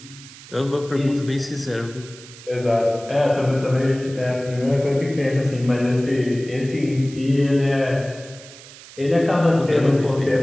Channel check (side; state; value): right; noise; hiss, 19 dB below the sound